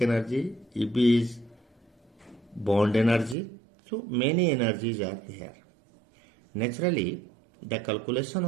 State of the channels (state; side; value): drops out; left; at 3.4 s